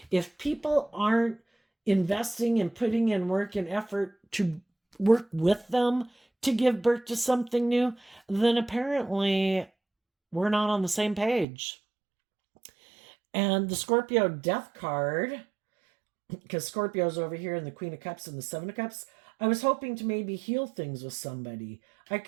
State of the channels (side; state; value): left; drops out; at 11.5 s